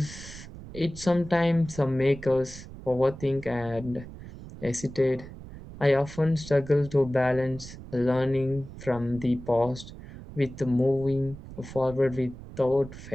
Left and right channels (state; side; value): noise; right; rumble, 14 dB below the sound